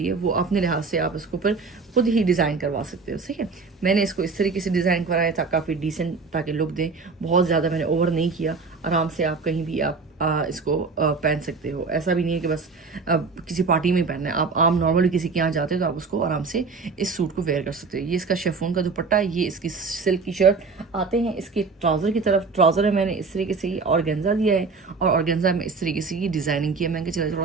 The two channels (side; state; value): left; quieter; 4.5 dB